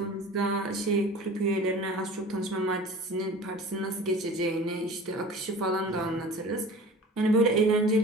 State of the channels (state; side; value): normal; both; correlation 0.40